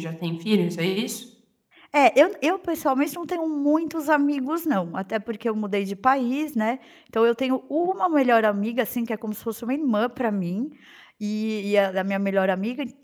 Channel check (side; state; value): both; identical; correlation 1.00